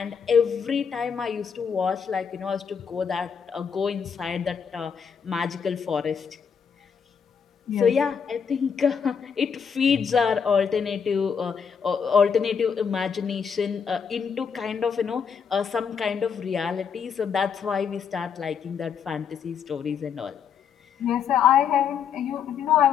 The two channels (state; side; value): quieter; right; 6.8 dB